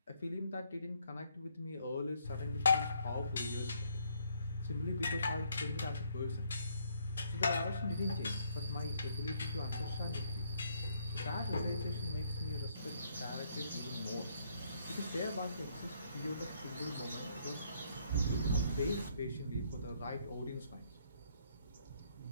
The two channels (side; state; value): both; inverted; correlation -0.69